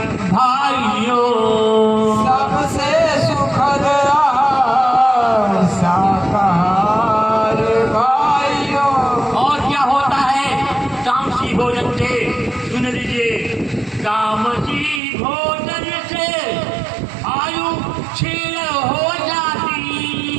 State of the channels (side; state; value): left; drops out; at 15.0 s